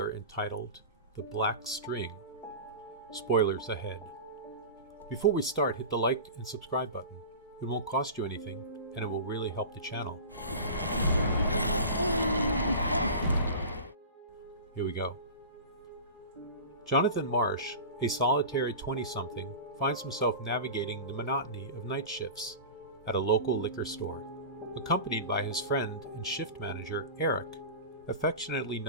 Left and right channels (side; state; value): both; inverted; correlation -0.32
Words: entitled The Black String. Spoilers ahead. Before we start, hit the like and subscribe button. It won't cost you anything, and it will really help the channel. Here we go. Jonathan Marsh, a solitary 20-something, finds himself navigating the monotony of night shifts at a local liquor store, accompanied by his friend and shift manager Eric, affectionately